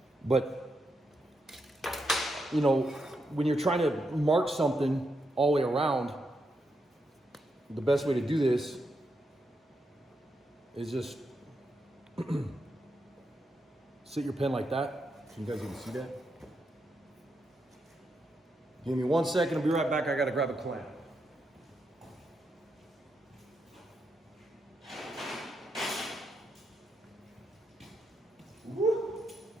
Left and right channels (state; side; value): normal; both; correlation 0.82